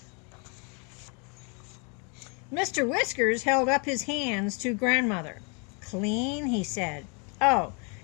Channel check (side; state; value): right; quieter; 35.0 dB